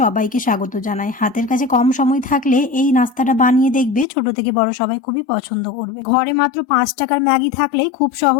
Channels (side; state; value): right; drops out; at 4.0 s